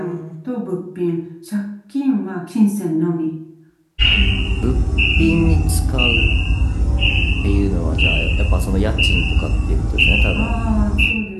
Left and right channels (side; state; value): both; identical; correlation 1.00